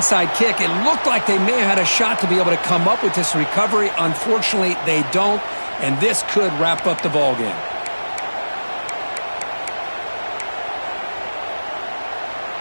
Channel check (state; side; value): inverted; both; correlation -1.00